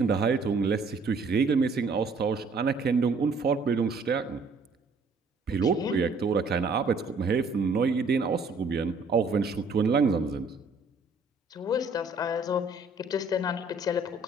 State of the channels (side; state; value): left; quieter; 3.5 dB